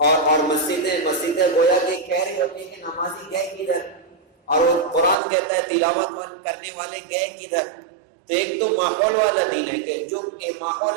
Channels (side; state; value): left; drops out; at 5.2 s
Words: مسجدیں گویا کہ کہہ رہی ہوتی ہیں کہ نمازی گئے کدھر، اور وہ قرآن کہتا ہے تلاوت کرنے والے گئے کدھر۔ تو ایک تو ماحول والا دین ہے کہ جو